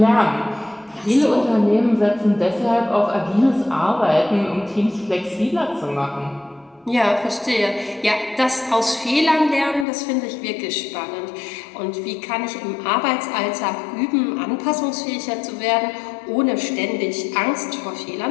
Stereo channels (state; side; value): drops out; right; at 9.9 s